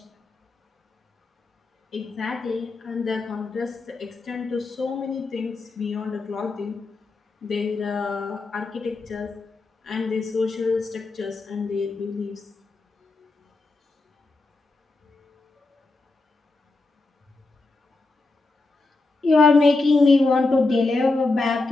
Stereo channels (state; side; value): quieter; right; 3.4 dB